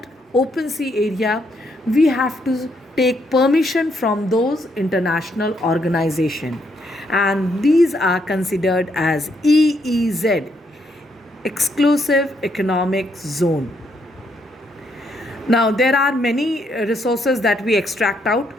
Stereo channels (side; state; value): both; normal; correlation 0.75